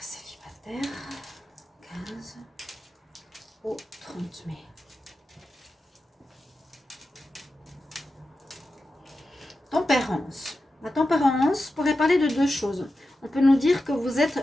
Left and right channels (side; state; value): both; normal; correlation 0.91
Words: célibataire 15 au 30 mai. Tempérance. La tempérance pourrait parler de deux choses. On peut nous dire que vous êtes